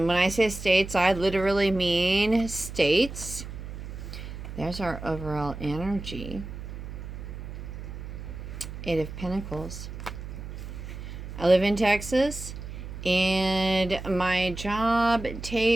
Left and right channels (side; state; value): right; noise; hum, 10 dB below the sound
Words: when I say states, I literally mean states. There's our overall energy. Eight of Pentacles. I live in Texas, and my job